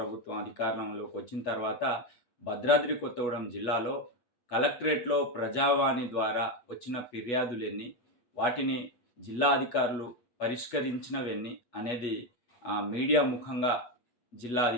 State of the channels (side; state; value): right; late; 8.3 ms